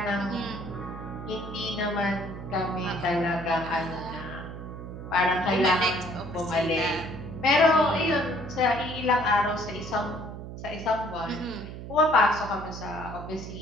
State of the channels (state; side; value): noise; right; hum, 10 dB below the sound